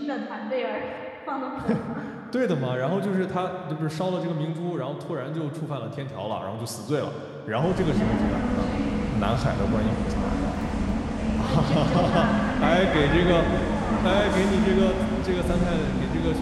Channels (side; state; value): both; identical; correlation 1.00